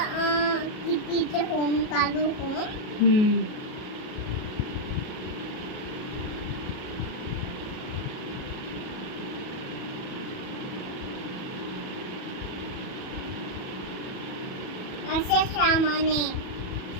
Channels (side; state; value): right; late; 37 ms